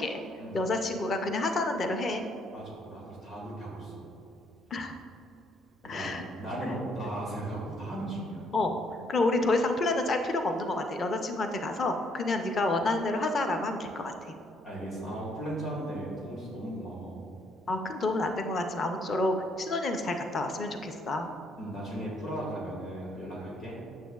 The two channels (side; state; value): both; normal; correlation 0.69